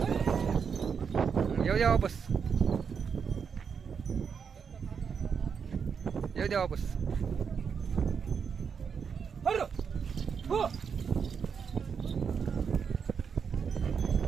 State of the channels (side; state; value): left; quieter; 6.5 dB